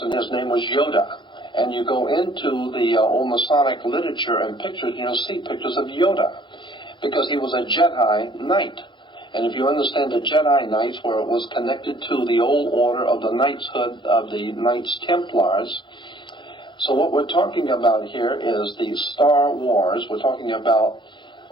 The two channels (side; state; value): right; late; 0.23 ms